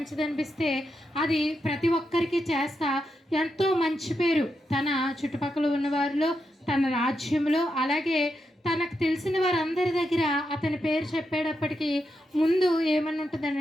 అనిపిస్తే అది ప్రతి ఒక్కరికి చేస్తా ఎంతో మంచి పేరు తన చుట్టుపక్కల ఉన్న వారిలో, తన రాజ్యంలో, అలాగే తనకు తెలిసిన వారందరి దగ్గర అతని పేరు చెప్పేటప్పటికీ ముందు ఏమని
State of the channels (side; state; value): both; normal; correlation 0.85